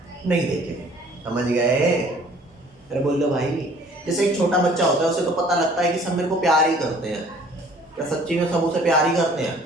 नहीं देखे, समझ गए? अरे बोल दो भाई, जैसे एक छोटा बच्चा होता है, उसे तो पता लगता है कि सब मेरे को प्यार ही करते हैं। क्या सच्ची में सब उसे प्यार ही करते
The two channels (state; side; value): normal; both; correlation 0.54